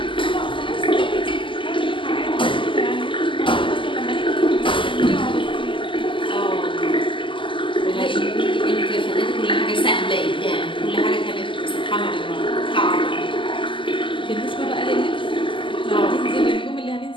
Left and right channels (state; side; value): late; right; 0.25 ms